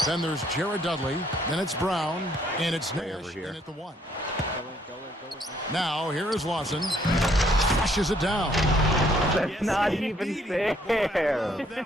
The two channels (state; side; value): normal; both; correlation 0.66